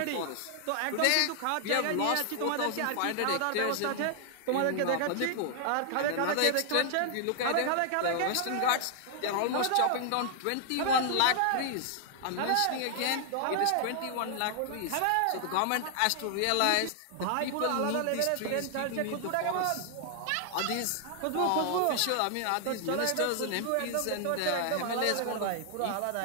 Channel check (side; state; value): both; different; correlation 0.00